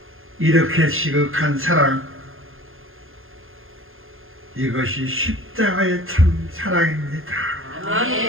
이렇게 지극한 사랑, 이것이 십자가의 참 사랑입니다.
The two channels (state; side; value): late; left; 0.60 ms